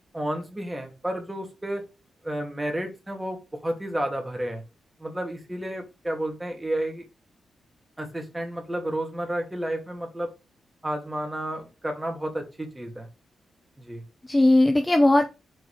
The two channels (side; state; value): both; normal; correlation 0.97